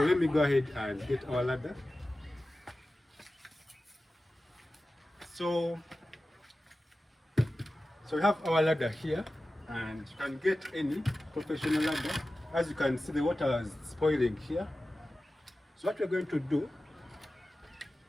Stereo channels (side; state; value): both; normal; correlation 0.95